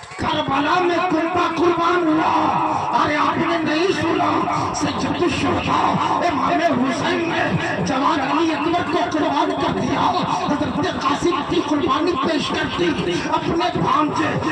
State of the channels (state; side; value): identical; both; correlation 1.00